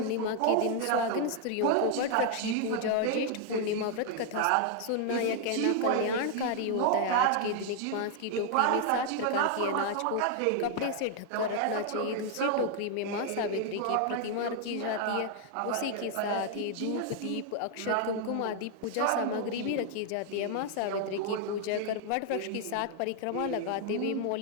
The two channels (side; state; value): both; different; correlation 0.00